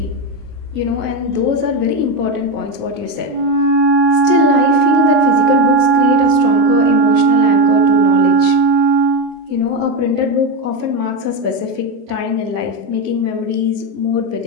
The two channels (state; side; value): late; left; 25 ms